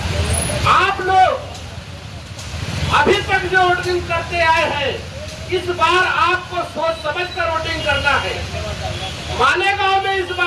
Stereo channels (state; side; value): identical; both; correlation 1.00